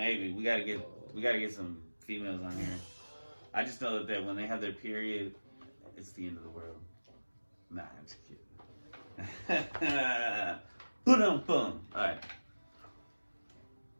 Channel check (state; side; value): inverted; both; correlation -1.00